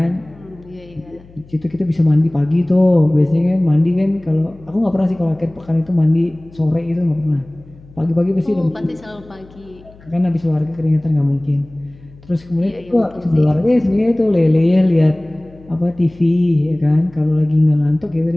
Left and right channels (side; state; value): left; noise; hum, 24 dB below the sound